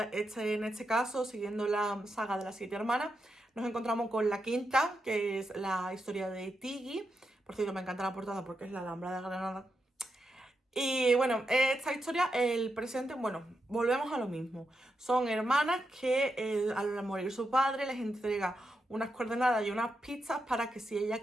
este caso, siguiendo la saga de las 7 hermanas, nos encontramos con la quinta, que es la historia de Tiggy. Por cierto, me encanta la portada porque es la Alhambra de Granada. Y bueno, esta historia, el presente, bueno, volvemos a lo mismo. Son hermanas que al morir su padre les entrega unas coordenadas y unas pistas para que, si ellas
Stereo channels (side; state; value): both; normal; correlation 0.85